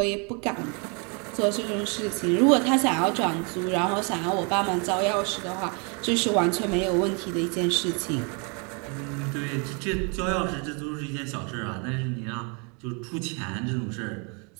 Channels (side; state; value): left; quieter; 34.7 dB